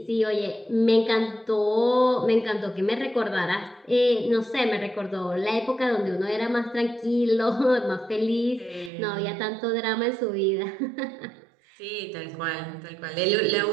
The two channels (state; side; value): drops out; left; at 8.9 s